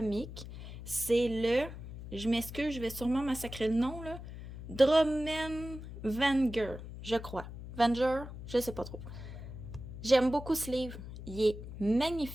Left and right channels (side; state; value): left; noise; hum, 11 dB below the sound